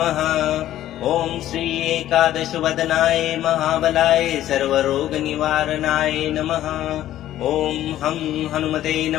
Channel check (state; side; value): quieter; right; 13.1 dB